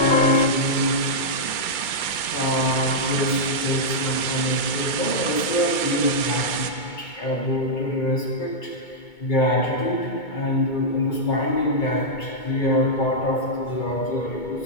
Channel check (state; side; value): late; right; 2.2 ms